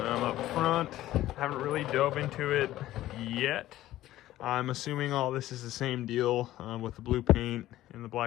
front, haven't really dove into it yet. I'm assuming all this is the same deal with the blue paint and the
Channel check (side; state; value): right; quieter; 14.7 dB